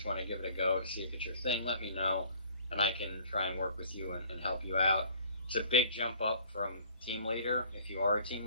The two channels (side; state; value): both; inverted; correlation -0.52